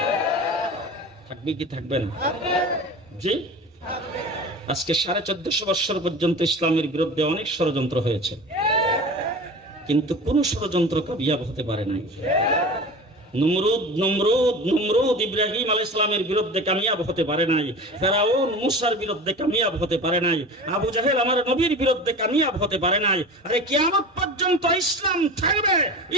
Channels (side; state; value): both; normal; correlation 0.34